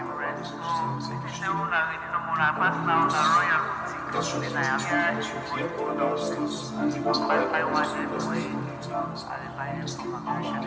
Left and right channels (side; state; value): both; identical; correlation 1.00